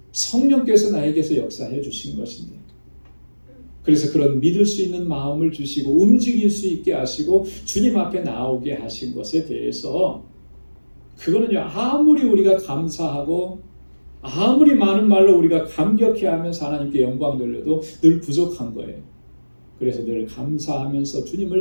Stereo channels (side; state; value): both; inverted; correlation -1.00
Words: 성령께서 나에게서 역사해 주신 것인데 그래서 그런 믿을 수 있는 마음을 주시고 움직일 수 있게 하시고 주님 앞에 나오게 하신 것에 대해서 그거는요, 아무리 우리가 감사하고 아무리 많은 말로 우리가 감격해하면서 하나님께 영광 돌려도 늘 부족한 거예요. 그래서 늘 감사하면서